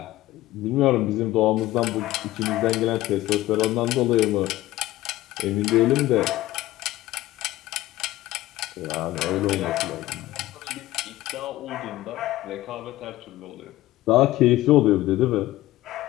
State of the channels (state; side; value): quieter; right; 16.3 dB